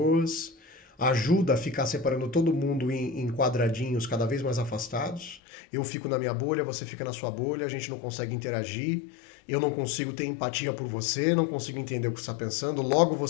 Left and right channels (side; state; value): right; drops out; at 5.4 s